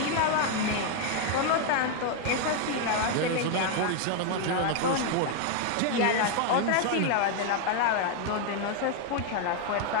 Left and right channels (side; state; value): both; different; correlation 0.01